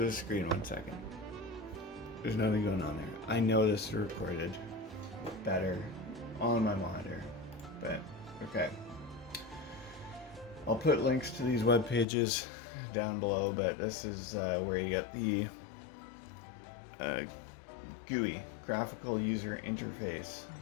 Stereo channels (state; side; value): drops out; right; at 12.1 s